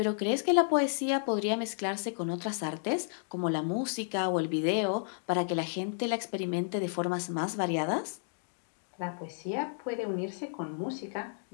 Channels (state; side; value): silent; right; digital silence